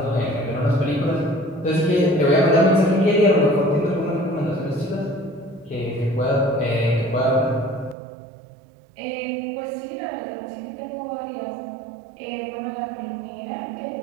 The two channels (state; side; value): drops out; left; at 8.0 s